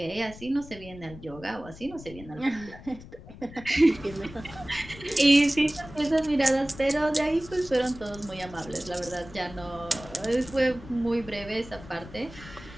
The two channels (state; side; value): noise; left; rumble, 17 dB below the sound